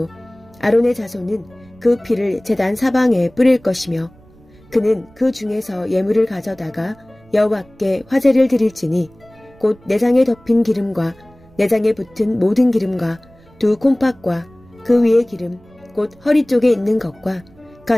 아론의 자손은 그 피를 제단 사방에 뿌릴 것이며 그는 그 중에서 예물을 가져다가 여호와께 화제를 드릴지니 곧 내장에 덮인 기름과 내장에 붙은 모든 기름과 두 콩팥과 그 위의 기름 곧 허리 쪽에 있는 것과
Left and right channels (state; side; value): noise; right; rumble, 27 dB below the sound